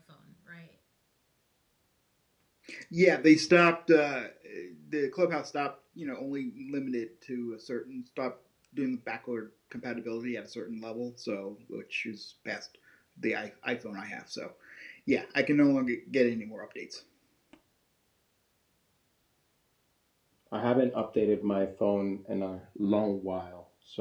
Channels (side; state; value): both; identical; correlation 1.00